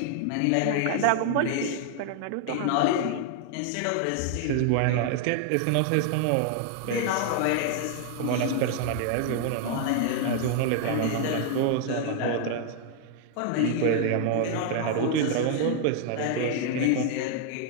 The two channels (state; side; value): different; both; correlation 0.00